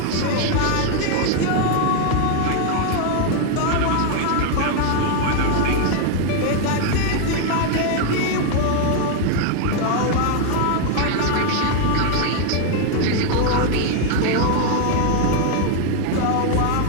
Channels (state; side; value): different; both; correlation 0.00